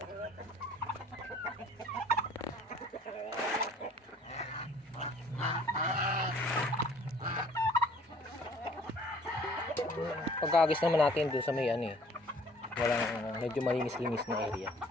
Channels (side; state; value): both; normal; correlation 0.55